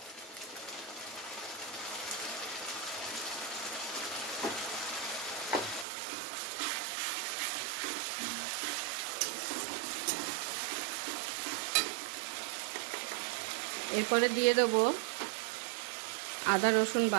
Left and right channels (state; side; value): drops out; left; at 5.9 s